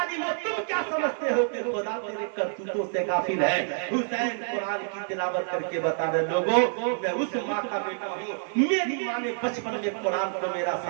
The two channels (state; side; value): silent; left; digital silence